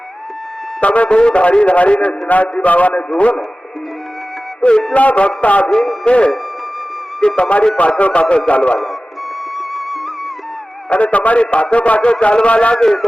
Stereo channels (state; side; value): normal; both; correlation 0.96